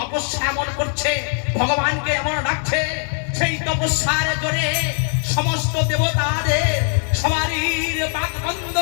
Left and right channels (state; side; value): silent; right; 57 dB below the other